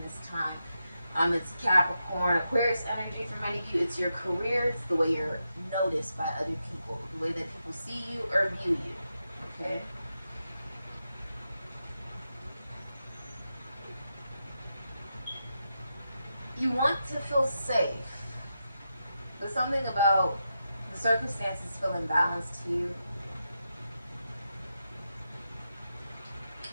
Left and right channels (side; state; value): both; inverted; correlation -0.86